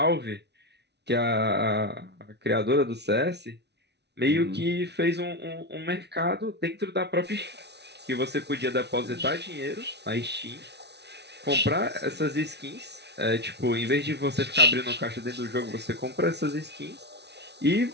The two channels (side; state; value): left; late; 0.50 ms